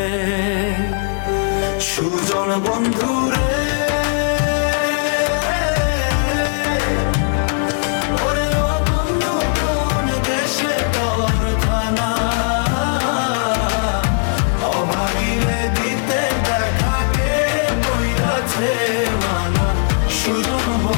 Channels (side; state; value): right; silent; digital silence